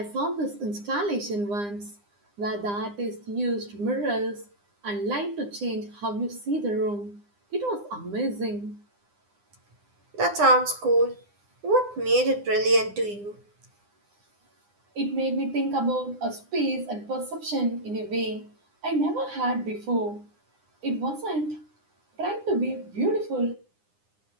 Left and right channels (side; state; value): left; late; 9.8 ms